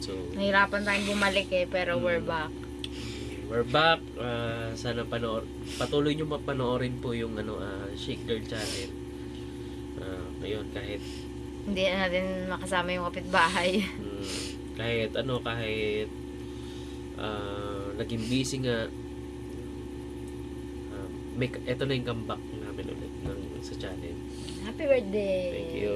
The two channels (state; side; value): identical; both; correlation 1.00